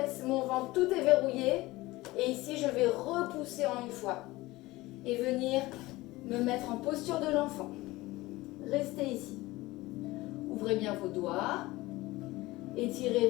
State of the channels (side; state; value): right; quieter; 19.6 dB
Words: mon ventre, tout est verrouillé. Et ici, je vais repousser en une fois. Et venir me mettre en posture de l'enfant. Restez ici. Ouvrez bien vos doigts. Étirez